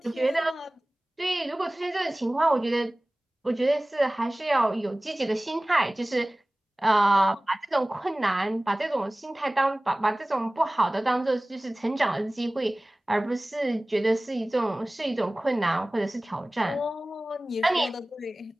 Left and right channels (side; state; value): both; normal; correlation 0.98